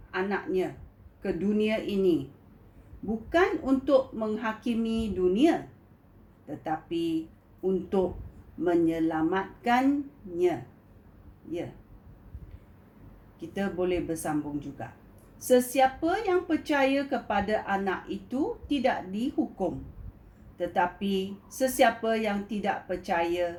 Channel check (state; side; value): identical; both; correlation 1.00